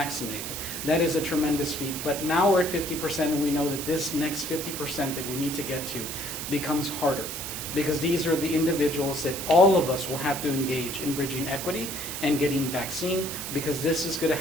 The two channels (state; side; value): noise; right; hiss, 6 dB below the sound